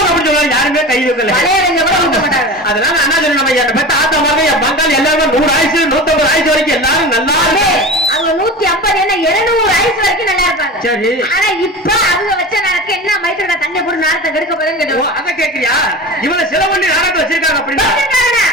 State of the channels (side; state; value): both; normal; correlation 0.31